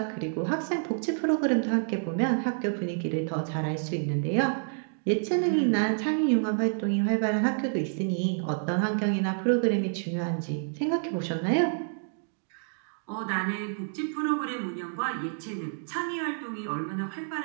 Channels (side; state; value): left; silent; digital silence